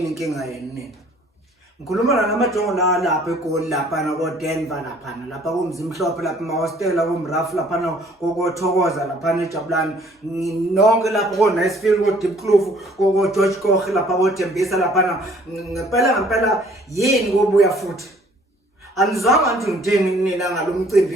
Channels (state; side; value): normal; both; correlation 0.57